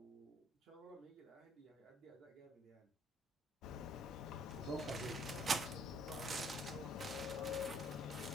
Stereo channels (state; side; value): normal; both; correlation 0.63